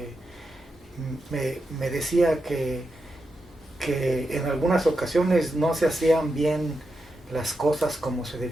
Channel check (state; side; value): normal; both; correlation 0.87